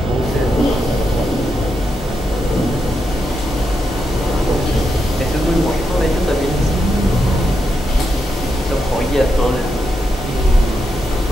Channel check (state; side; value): normal; both; correlation 0.84